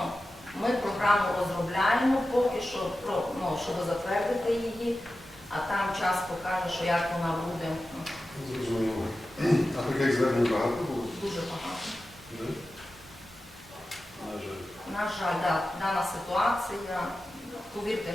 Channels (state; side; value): normal; both; correlation 0.93